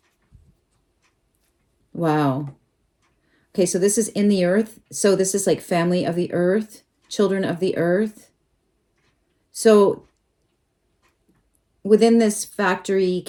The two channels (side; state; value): both; identical; correlation 1.00